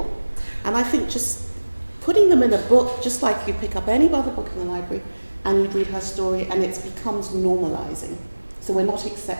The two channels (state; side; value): inverted; both; correlation -1.00